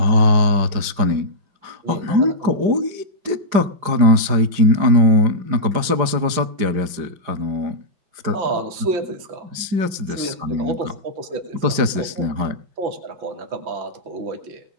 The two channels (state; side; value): late; left; 5.0 ms